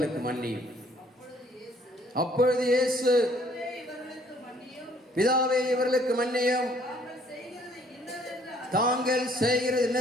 மன்னியும். அப்பொழுது இயேசு, பிதாவே இவர்களுக்கு மன்னியும், தாங்கள் செய்கிறது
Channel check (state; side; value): normal; both; correlation 0.61